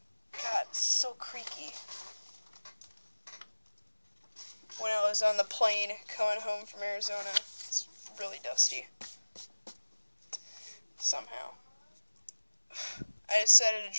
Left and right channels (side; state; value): both; inverted; correlation -1.00